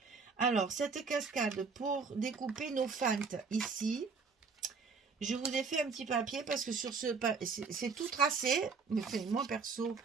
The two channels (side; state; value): left; quieter; 5.0 dB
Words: Alors, cette cascade, pour découper nos fentes ici, je vous ai fait un petit papier parce que sur ce c'est tout tracé. Mais moi perso,